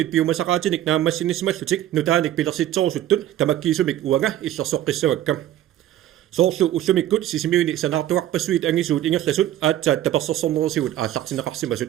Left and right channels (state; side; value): quieter; left; 12.6 dB